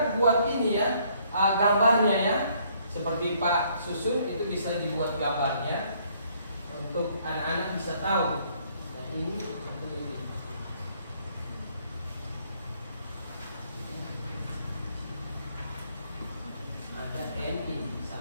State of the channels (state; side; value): inverted; both; correlation -0.65